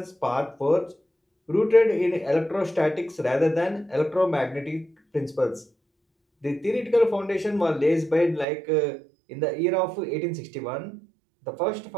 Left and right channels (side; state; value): left; drops out; at 8.5 s